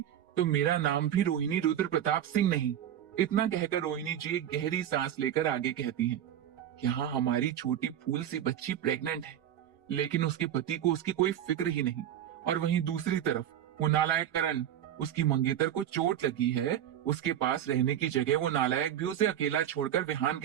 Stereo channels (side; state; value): left; quieter; 10.7 dB